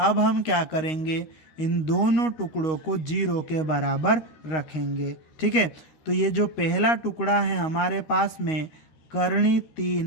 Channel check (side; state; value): right; late; 13 ms